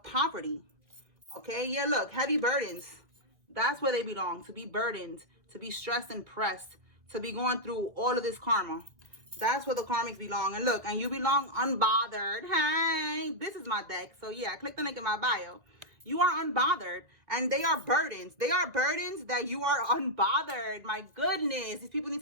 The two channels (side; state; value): left; late; 2.0 ms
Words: poverty. Okay, yeah, look, heavy burdens. That's where they belong. To be burdened, to be stressed and pressed, to be going through all of this karma. That's where the karmics belong. And look, and you belong unbothered. Hey, this is my deck. So yeah, click the link in my bio. You are unbothered, and they are burdens. They are burdens that you are unbothered. My goodness, these people need